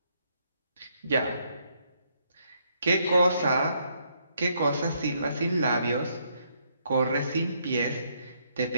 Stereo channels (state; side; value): inverted; both; correlation -0.72